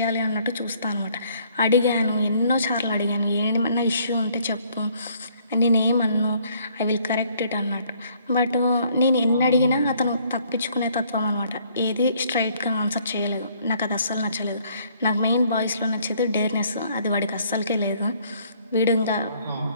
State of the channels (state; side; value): inverted; both; correlation -0.63